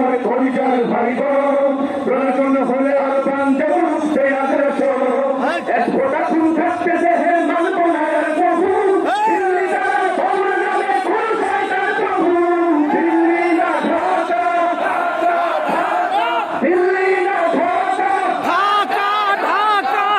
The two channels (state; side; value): identical; both; correlation 1.00